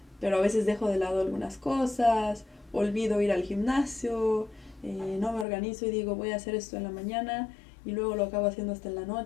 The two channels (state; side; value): drops out; right; at 5.5 s